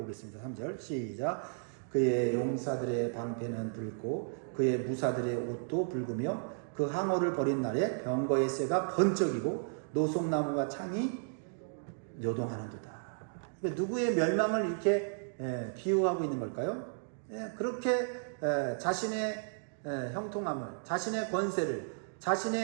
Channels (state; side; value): silent; left; digital silence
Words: 3절 시작. 그의 용사들의 방패는 붉고 그의 무사들의 옷도 붉으며 그 항어를 벌인 날에 병거의 쇠가 번쩍이고 노송나무가 창이 요동하는도다. 누구의 멸망을 이렇게 비유하고 있는 걸까요? 그렇게 자신의 형통함을, 자신의 권세를,